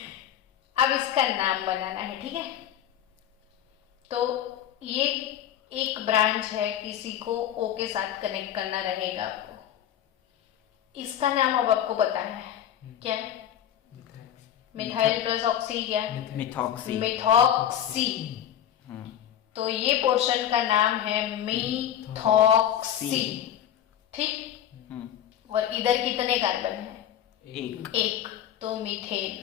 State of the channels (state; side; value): quieter; right; 10.5 dB